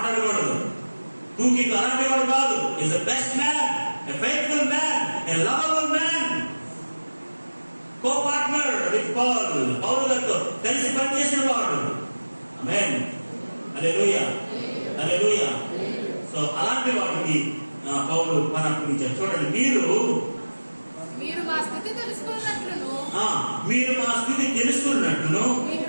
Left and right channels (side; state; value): both; inverted; correlation -1.00